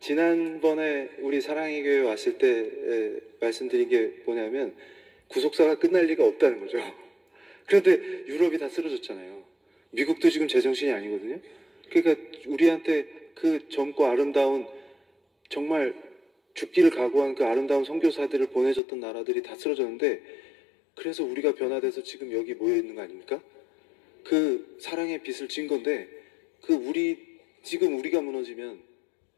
우리 사랑의 교회 왔을 때 말씀드린 게 뭐냐면 구속사가 끝날 리가 없다는 거죠. 그런데 유럽이 다 쓰러졌잖아요. 미국도 지금 제정신이 아니거든요. 그러니까 우리한테 그 젊고 아름다운 정말 죽기를 각오한 그 아름다운 선교사들을 보내줬던 나라들이 다 쓰러졌는데 그래서 우리가 변화돼서 지금 여기 모여 있는 거 아닙니까? 그 사랑의 빛을 진 건데 지금 우리가 무너지면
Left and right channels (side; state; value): right; drops out; at 18.8 s